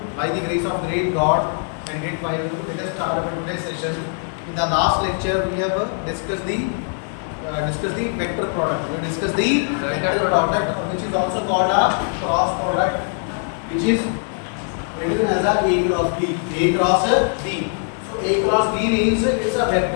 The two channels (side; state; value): right; silent; 57 dB below the other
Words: By the grace of great God and great Bible, let us start our today's session. In the last lecture, we have discussed the vector product. We discussed the vector product, which is also called a cross product, which is written as a cross B. A cross B. So A cross B means it's a